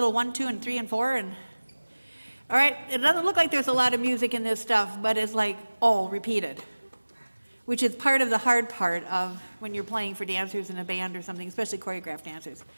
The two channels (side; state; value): both; inverted; correlation -1.00